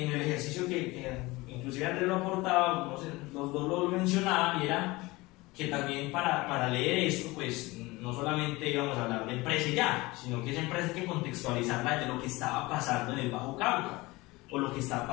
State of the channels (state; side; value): quieter; right; 21.7 dB